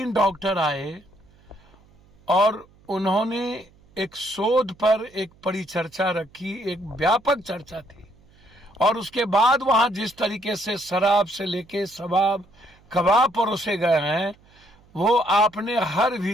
डॉक्टर आए और उन्होंने एक शोध पर एक परिचर्चा रखी, एक व्यापक चर्चा थी। और उसके बाद वहां जिस तरीके से शराब से लेके शबाब कबाब परोसे गए हैं, वो आपने हर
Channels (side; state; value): right; noise; hum, 29 dB below the sound